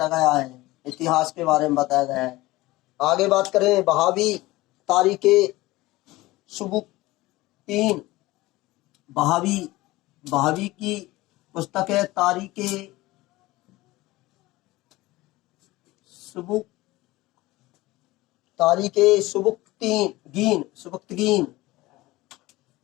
गया है। आगे बात करें बहावी तारीख सुबुक्तीन। बहावी की पुस्तक है तारीख सुबुक्तगीन।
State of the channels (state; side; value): quieter; right; 19.1 dB